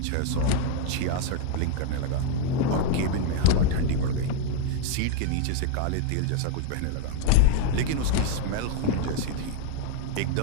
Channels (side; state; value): both; different; correlation 0.01